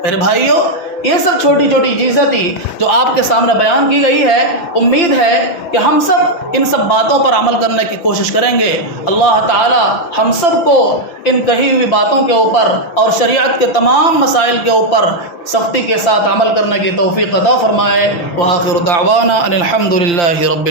میرے بھائیوں، یہ سب چھوٹی چھوٹی چیزیں تھی جو آپ کے سامنے بیان کی گئی ہے۔ امید ہے کہ ہم سب ان سب باتوں پر عمل کرنے کی کوشش کریں گے۔ اللہ تعالی ہم سب کو ان کہی ہوئی باتوں کے اوپر اور شریعت کے تمام مسائل کے اوپر سختی کے ساتھ عمل کرنے کی توفیق عطا فرمائے۔ وآخر دعوانا ان الحمد للہ رب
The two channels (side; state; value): right; late; 5.8 ms